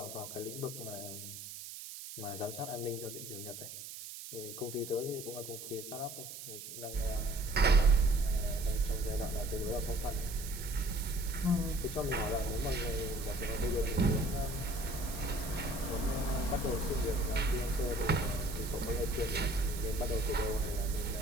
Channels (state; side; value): noise; right; hiss, 10 dB below the sound